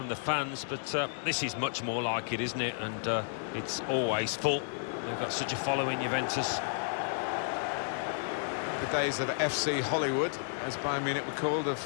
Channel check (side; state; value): right; silent; digital silence